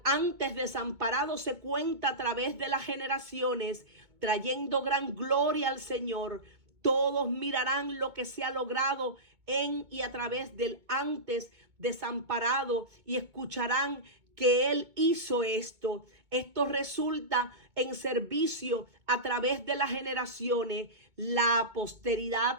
antes desamparado se cuenta a través de las generaciones, trayendo gran gloria al Señor. Todos mirarán lo que se ha logrado en y a través del antes desamparado y escucharán que Él hizo esto. Esto resulta en servicio a través de las generaciones. La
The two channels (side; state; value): left; late; 2.1 ms